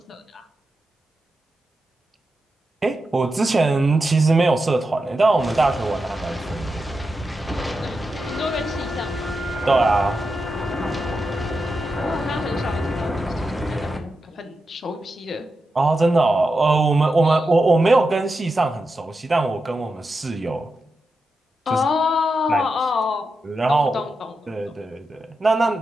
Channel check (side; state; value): both; normal; correlation 0.89